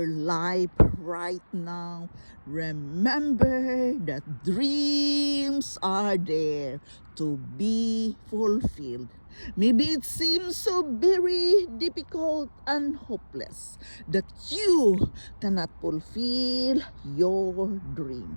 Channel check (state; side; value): inverted; both; correlation -1.00